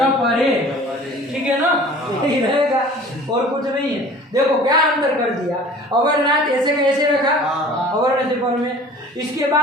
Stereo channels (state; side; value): normal; both; correlation 0.45